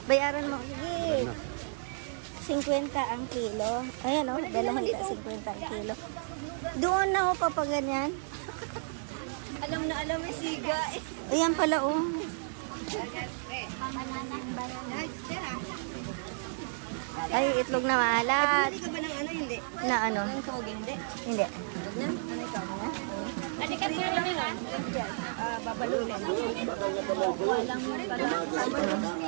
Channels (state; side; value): silent; left; digital silence